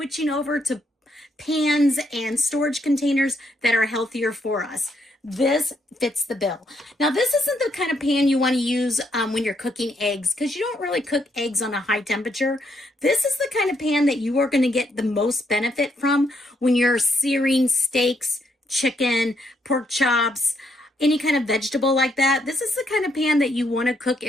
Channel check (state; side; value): normal; both; correlation 0.75